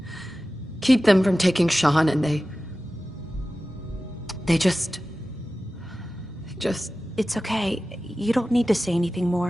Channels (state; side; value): normal; both; correlation 0.95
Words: keep them from taking Sean, and they just... It's okay. You don't need to say anything